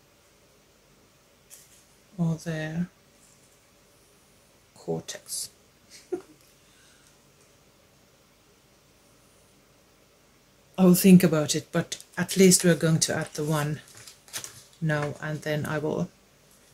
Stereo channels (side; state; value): both; identical; correlation 1.00